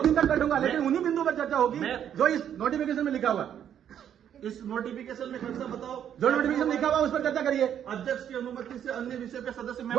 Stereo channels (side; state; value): left; quieter; 9.5 dB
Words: दिन तक बैठूंगा, लेकिन उन्हीं बिंदु पर चर्चा होगी जो इस नोटिफिकेशन में लिखा हुआ। इस नोटिफिकेशन में खर्चा बताओ, जो नोटिफिकेशन लिखा हुआ उस पर चर्चा करिए। अध्यक्ष की अनुमति से अन्य विषय पे सदस्य